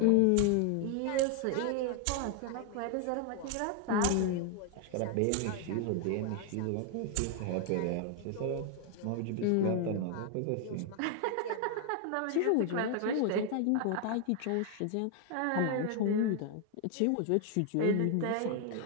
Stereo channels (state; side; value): different; both; correlation 0.00